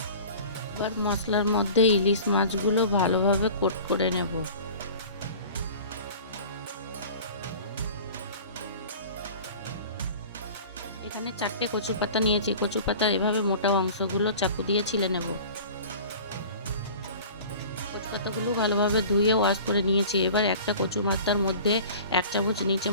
এবার মশলার মধ্যে ইলিশ মাছগুলো ভালোভাবে কোট করে নেব। এখানে 4টে কচু পাতা নিয়েছি। কচু পাতার এভাবে মোটা অংশগুলো চাকু দিয়ে ছিলে নেব। কচু পাতাগুলো ভালোভাবে ধুয়ে ওয়াশ করে নিয়েছি। এবার একটা কচু পাতার মধ্যে 1 চামচ নিচে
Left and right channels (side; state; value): both; inverted; correlation -0.42